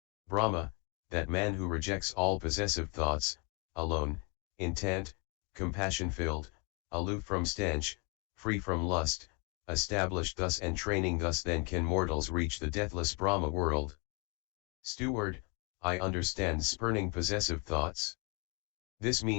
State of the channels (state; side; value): quieter; right; 33.4 dB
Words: Brahma, that man who rejects all possessive thoughts, alone, intent, compassion-filled, aloof from stench, free from lust, established thus and training thus, then can mortals reach the deathless Brahma-world. Steward, I understand spurning possessive thoughts. This